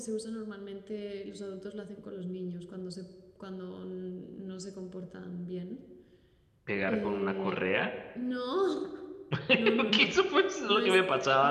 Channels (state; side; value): identical; both; correlation 1.00